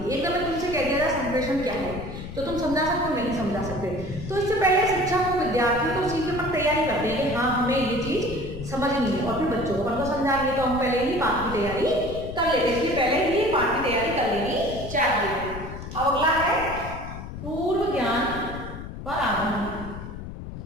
एकदम मैं तुमसे कह दिया था संप्रेषण क्या है तो तुम समझा सकते हो, नहीं समझा सकते। तो इससे पहले शिक्षक को विद्यार्थी तो उस चीज़ पर तैयारी करते हैं कि हाँ हमें ये चीज़ समझनी है, और फिर बच्चों को अपन को समझाएंगे तो हम पहले ही पाठ की तैयारी कर लेते हैं, इसलिए पहले ही पाठ की तैयारी कर लेनी चाहिए। अब अगला है पूर्व ज्ञान पर आधार।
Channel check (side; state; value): left; noise; rumble, 9 dB below the sound